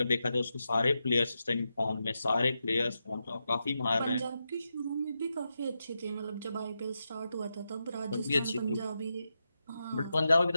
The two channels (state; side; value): inverted; both; correlation -0.87